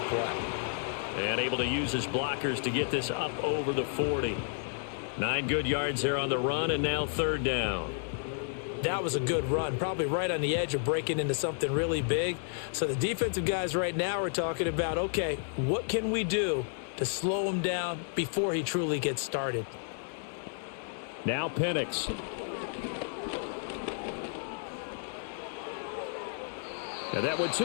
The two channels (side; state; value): right; silent; digital silence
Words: play. And able to use his blockers to get this up over the 40. 9 good yards there on the run, and now 3rd down. That was a good run, probably right on the edge of breaking into something really big. So the defensive guys right now are talking about, okay, what can we do to slow him down before he truly gets started? Now Penix. And that went to